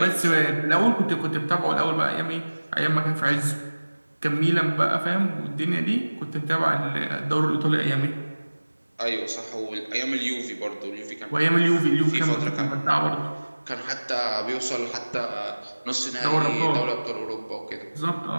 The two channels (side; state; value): both; inverted; correlation -1.00